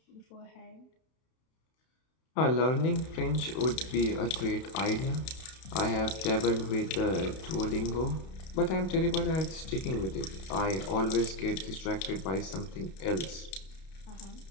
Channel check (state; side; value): late; right; 31 ms